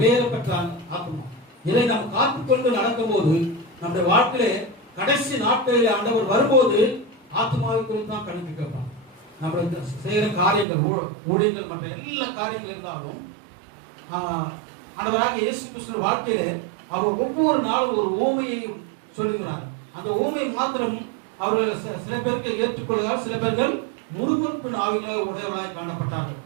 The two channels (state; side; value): drops out; left; at 10.7 s